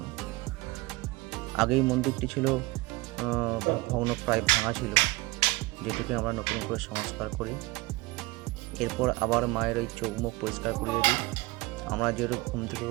আগে এই মন্দিরটি ছিল ভগ্ন, প্রায় ভাঙা ছিল, যেটিকে আমরা নতুন করে সংস্কার করি। এরপর আবার মায়ের ওই চৌমুখ পরিষ্কার করিয়ে দিই। আমরা যেরূপ ঘুম থেকে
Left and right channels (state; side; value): quieter; left; 21.8 dB